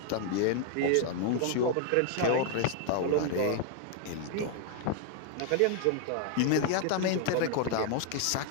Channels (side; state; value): both; different; correlation 0.00